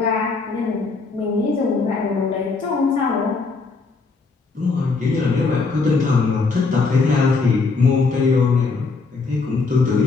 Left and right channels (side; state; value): right; quieter; 4.2 dB